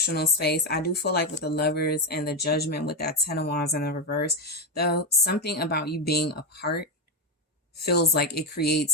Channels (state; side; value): normal; both; correlation 0.10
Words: space. I do feel like with the Lovers and the Judgment with that Ten of Wands in the reverse, though, something about you being apart feels like it